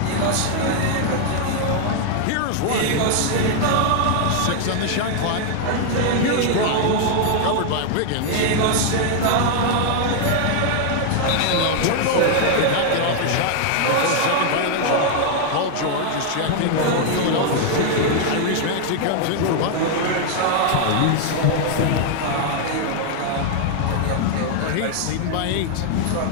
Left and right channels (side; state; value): both; different; correlation 0.00